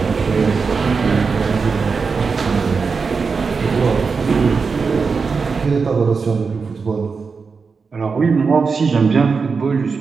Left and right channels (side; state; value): left; quieter; 5.0 dB